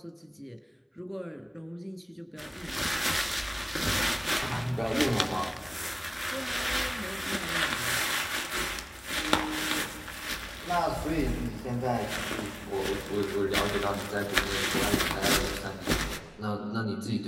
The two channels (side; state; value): both; identical; correlation 1.00